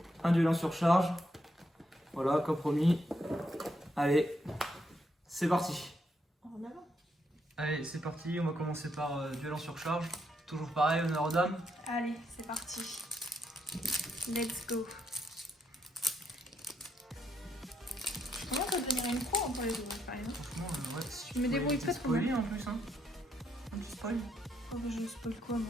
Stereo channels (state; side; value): normal; both; correlation 0.77